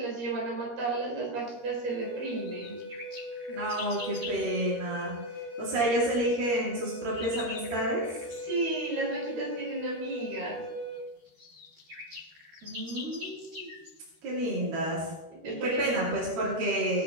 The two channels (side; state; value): left; late; 13 ms